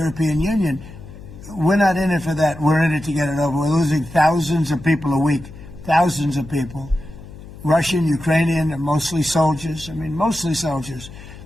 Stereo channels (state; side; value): noise; left; hum, 16 dB below the sound